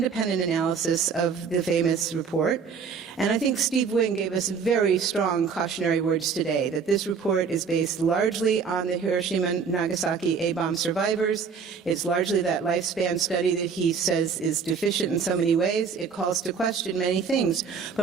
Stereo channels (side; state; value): left; quieter; 5.9 dB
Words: analysis of the famous report, and I think Steve Wing gave us very strong cautionary words today, that this report is based largely on the Hiroshima and Nagasaki A-bomb survivors. It's largely that lifespan study that he says is deficient in so many ways. It calls to question many things.